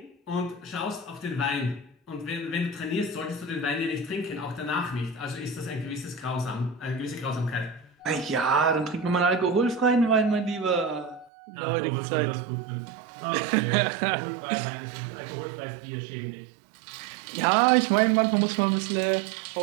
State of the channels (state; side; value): drops out; left; at 11.3 s